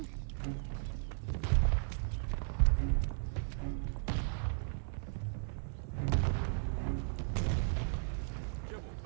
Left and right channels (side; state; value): left; silent; 54 dB below the other